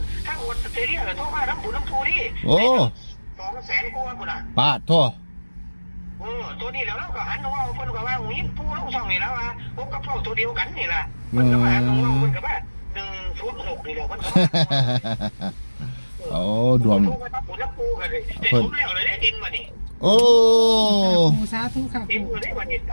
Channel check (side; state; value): both; inverted; correlation -1.00